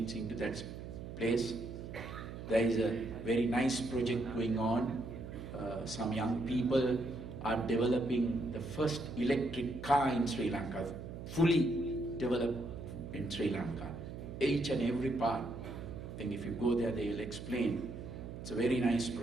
into that place. There is a very nice project going on. Some young people are developing the first electric car in Sri Lanka, fully developed in Sri Lanka. Each and every part. I think if you go there, they will explain. It's a very nice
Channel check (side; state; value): right; noise; hum, 10 dB below the sound